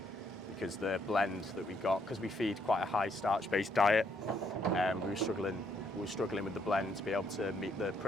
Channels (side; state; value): both; normal; correlation 0.72